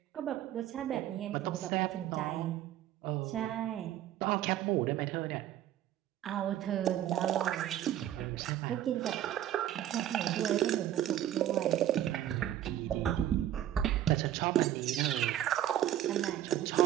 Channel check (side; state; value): left; quieter; 12.0 dB